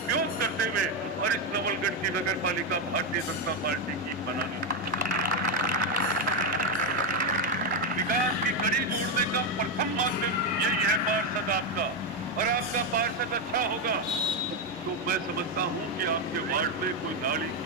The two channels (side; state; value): both; normal; correlation 0.08